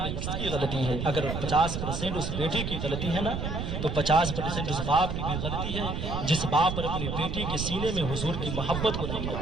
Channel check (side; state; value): right; noise; rumble, 3 dB below the sound